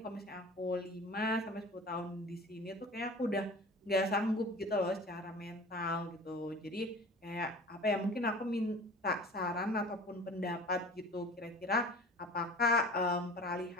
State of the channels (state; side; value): normal; both; correlation 0.41